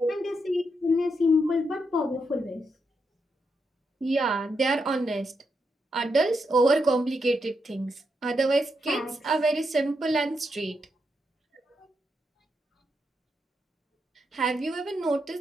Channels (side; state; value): both; normal; correlation 0.82